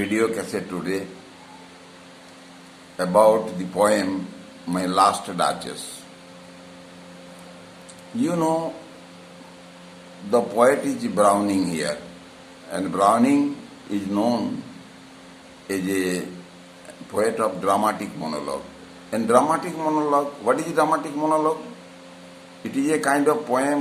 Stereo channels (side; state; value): both; identical; correlation 1.00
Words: cassette today about the poem My Last Duchess. You know, the poet is Browning here, and Browning is known as a poet of dramatic monologue. And dramatic monologue, what is dramatic monologue? It is a kind of